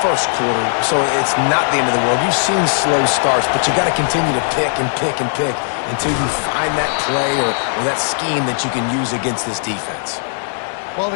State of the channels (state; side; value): silent; right; 68 dB below the other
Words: quarter, so it's not the end of the world. You've seen slow starts, but you got to continue to pick and pick and pick until you find that play or that scheme that you can use against this defense. Well,